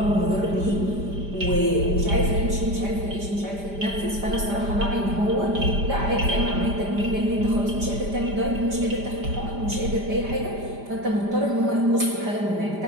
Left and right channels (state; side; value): late; left; 5.0 ms